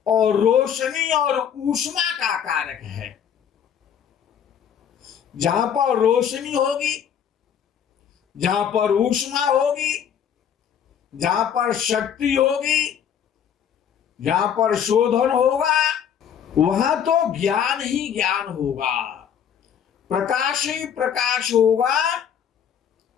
और रोशनी और ऊष्मा का कारक है। जहां पर रोशनी होगी, जहां पर ऊष्मा होगी, जहां पर शक्ति होगी, जहां पर शोधन होगा, वहां तो ज्ञान ही ज्ञान होगा, प्रकाश ही प्रकाश होगा।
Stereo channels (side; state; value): right; quieter; 8.5 dB